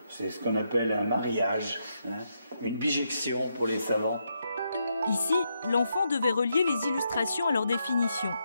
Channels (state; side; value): inverted; both; correlation -0.80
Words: C'est ce qu'on appelle un mariage, hein, une bijection pour les savants. Ici, l'enfant devait relier les illustrations à leur définition.